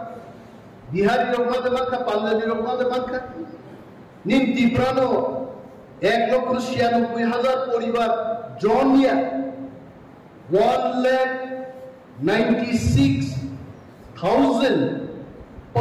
বিহারি রহমাদে মানকা পাঞ্জাবি রহমাদে মানকা নিন তিপ্রানো 1,96,000 পরিবার জনিয়া 1,96,000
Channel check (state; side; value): identical; both; correlation 1.00